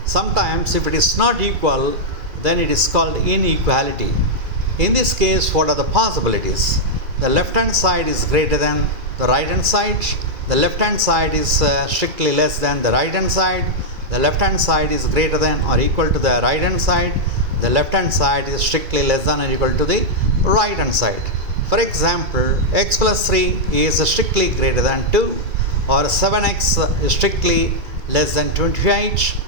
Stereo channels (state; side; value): late; left; 2.3 ms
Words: Sometimes if it is not equal, then it is called inequality. In this case, what are the possibilities? The left hand side is greater than the right hand side. The left hand side is strictly less than the right hand side. The left hand side is greater than or equal to the right hand side. The left hand side is strictly less than or equal to the right hand side. For example, x plus 3 is strictly greater than 2, or 7x is strictly less than 28,